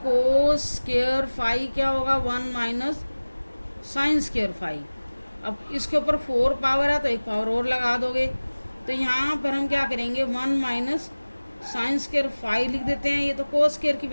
स्क्वायर फाई क्या होगा, 1 माइनस साइन स्क्वायर फाई। अब इसके ऊपर 4 पावर है तो एक पावर और लगा दोगे, तो यहाँ पर हम क्या करेंगे, 1 माइनस साइन स्क्वायर फाई लिख देते हैं। ये तो कोस स्क्वायर की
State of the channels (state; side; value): inverted; both; correlation -1.00